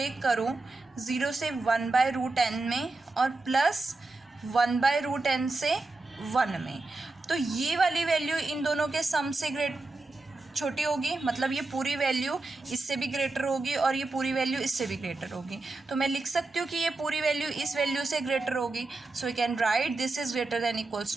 करूं 0 से 1/√n में और प्लस 1/√n से 1 में, तो ये वाली वैल्यू इन दोनों के सम से छोटी होगी, मतलब ये पूरी वैल्यू इससे भी ग्रेटर होगी और ये पूरी वैल्यू इससे भी ग्रेटर होगी. तो मैं लिख सकती हूँ कि ये पूरी वैल्यू इस वैल्यू से ग्रेटर होगी. So we can write this is greater than equals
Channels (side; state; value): left; quieter; 3.3 dB